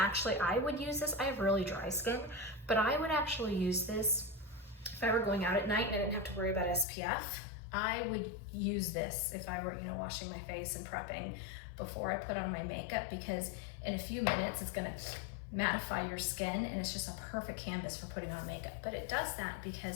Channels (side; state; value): right; drops out; at 6.9 s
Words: I would use this. I have really dry skin, but I would actually use this if I were going out at night and I didn't have to worry about SPF. I would use this if I were, you know, washing my face and prepping before I put on my makeup, because in a few minutes it's gonna mattify your skin and it's just a perfect canvas for putting on makeup. But it does that